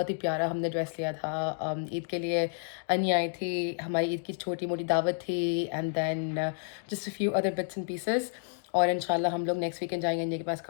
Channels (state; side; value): silent; right; digital silence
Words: ही प्यारा हमने ड्रेस लिया था ईद के लिए। अनिया आई थी, हमारी ईद की छोटी मोटी दावत थी and then just a few other bits and pieces. और इंशाल्लाह हम लोग नेक्स्ट वीकेंड जाएंगे अनिया के पास